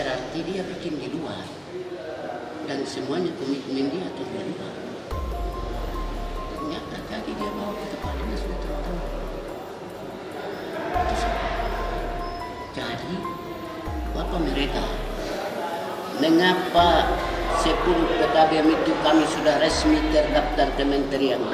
dia bikin di luar. Dan semuanya komitmen dia atau di luar. Ternyata tadi dia bawa ke kepalanya sudah tahu. Jadi, apa mereka? Mengapa 10 PKBM itu kami sudah resmi terdaftar Kementerian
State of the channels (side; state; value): both; identical; correlation 1.00